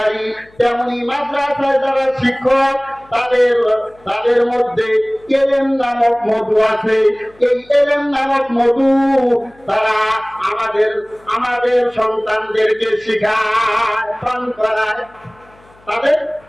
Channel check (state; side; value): noise; left; hum, 29 dB below the sound